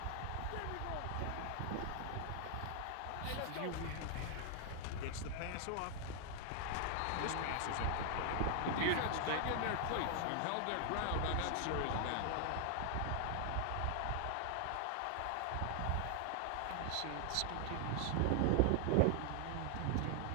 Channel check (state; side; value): different; both; correlation 0.00